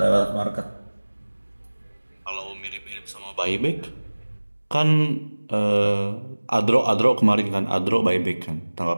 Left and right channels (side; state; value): both; inverted; correlation -1.00